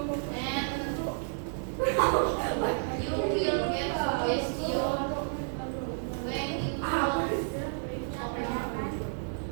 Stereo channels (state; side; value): silent; left; digital silence